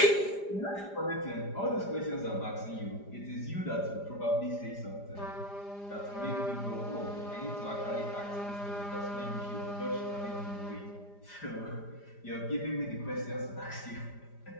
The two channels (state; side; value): late; right; 5.0 ms